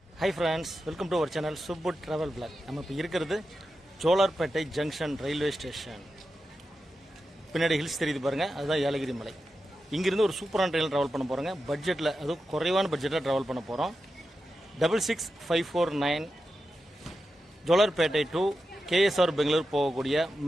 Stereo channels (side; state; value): both; normal; correlation 0.90